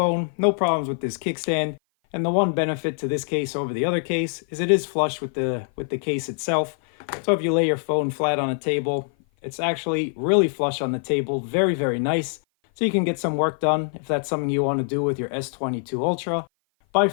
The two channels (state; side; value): silent; right; 56 dB below the other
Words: No problems with this kickstand. And the one benefit to this case over the other case is it is flush with the case itself. So if you lay your phone flat on a table, it's actually really flush on the table. Very, very nice. So you can get some work done if that's something you want to do with your S22 Ultra. By